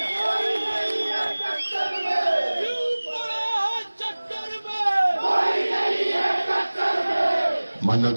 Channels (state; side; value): inverted; both; correlation -1.00